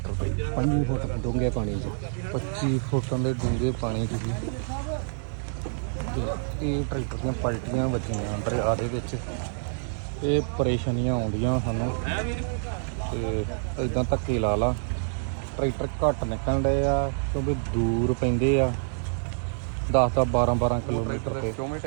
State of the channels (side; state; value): left; silent; digital silence